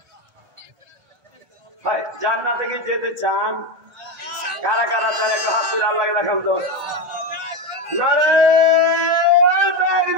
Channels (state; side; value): late; left; 1.4 ms